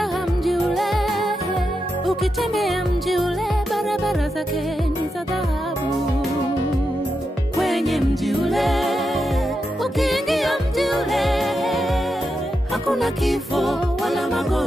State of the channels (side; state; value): both; normal; correlation 0.87